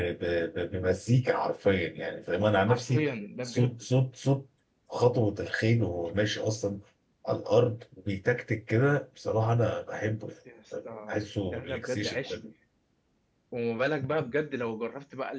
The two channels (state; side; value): identical; both; correlation 1.00